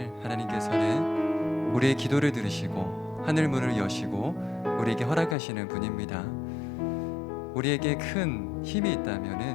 하나님께서는 우리의 기도를 들으시고 하늘 문을 여시고 우리에게 허락하시는 분입니다. 우리에게 큰 힘이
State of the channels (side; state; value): right; drops out; at 5.4 s